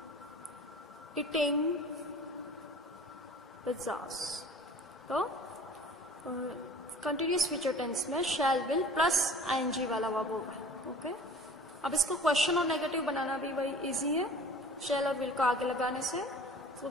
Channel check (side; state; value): both; normal; correlation 0.44